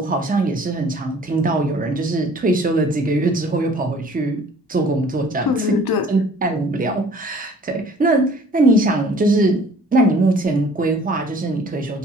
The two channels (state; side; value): normal; both; correlation 0.52